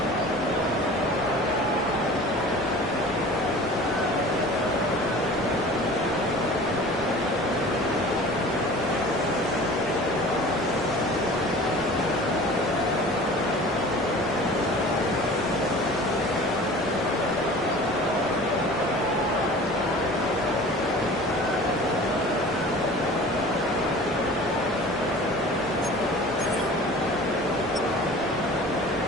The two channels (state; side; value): normal; both; correlation 0.42